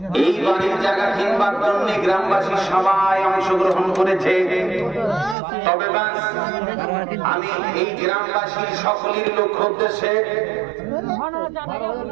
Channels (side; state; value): left; drops out; at 5.4 s